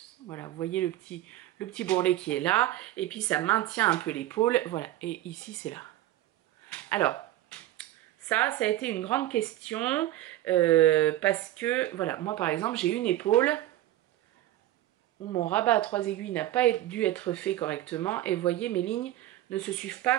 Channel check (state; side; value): quieter; left; 14.6 dB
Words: Voilà, vous voyez le petit bourrelet qui est là. Et puis, ça maintient un peu l'épaule. Voilà, et ici, c'est là. Alors, ça a été une grande question. Parce que, voilà, moi, par exemple, j'ai une épaule où mon rabat à 3 aiguilles n'a pas dû être fait correctement. Et vous voyez, mes lignes ne se suivent pas